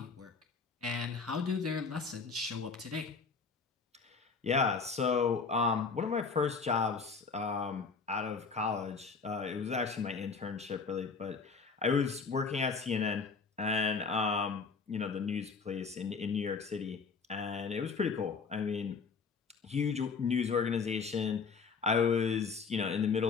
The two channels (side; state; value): right; quieter; 5.0 dB